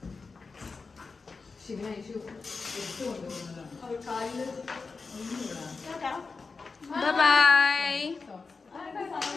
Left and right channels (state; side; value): quieter; right; 4.4 dB